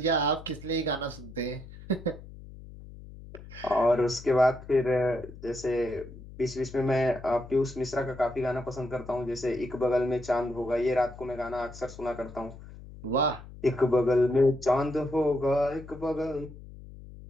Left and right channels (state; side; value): noise; left; hum, 16 dB below the sound